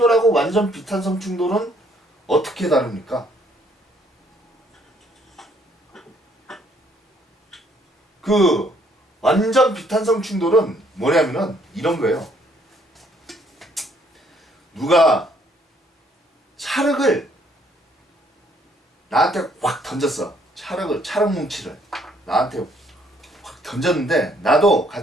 완전 비탄성 충돌은 어떻게 다릅니까? 그 완전 비탄성 충돌은 뭐냐면은 이런 거예요. 누가 찰흙을 나한테 확 던졌어. 찰흙 뭉치를 나한테 확 던졌는데 나도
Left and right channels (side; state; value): both; normal; correlation 0.66